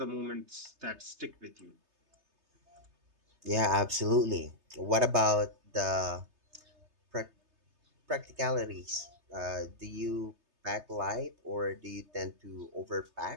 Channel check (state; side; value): late; left; 3.3 ms